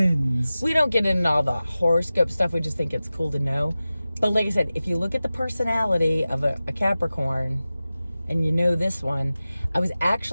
We don't get into all the horoscope stuff. We just think it's cool to know. But like I said, if you look at the personality of a Capricorn, and you know this one, I was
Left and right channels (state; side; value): inverted; both; correlation -0.96